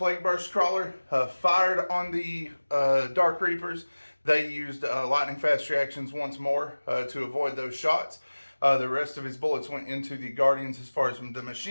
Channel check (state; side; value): inverted; both; correlation -1.00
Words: Burst Crawler fired on the Dark Reapers. They used lightning fast reactions once more to avoid those shots. The rest of his bullets went into the Guardians as far as the